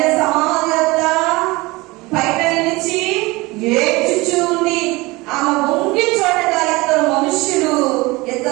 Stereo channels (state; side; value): quieter; left; 22.4 dB